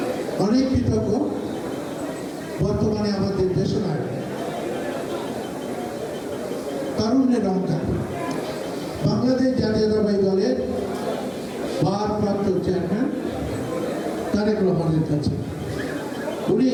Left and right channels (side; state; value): both; identical; correlation 1.00